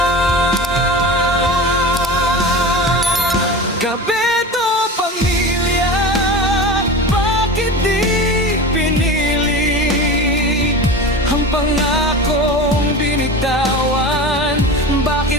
Kapeto, pamilya, bakit di pinili ang pangakong binitawan?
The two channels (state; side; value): normal; both; correlation 0.30